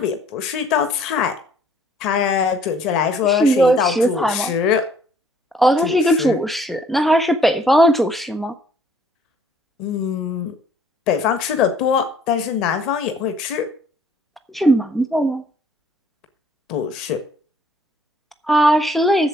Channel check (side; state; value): both; normal; correlation 0.60